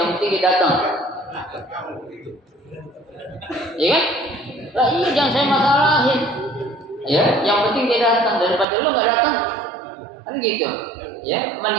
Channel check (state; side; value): drops out; left; at 8.7 s